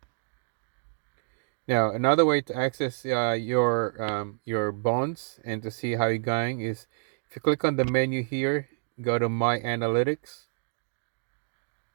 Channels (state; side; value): silent; left; 59 dB below the other